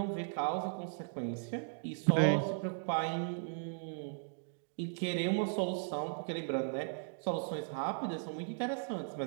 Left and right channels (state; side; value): silent; left; digital silence